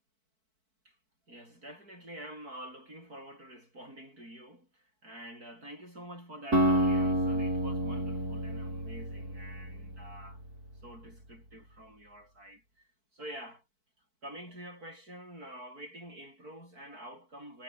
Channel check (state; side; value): late; left; 4.5 ms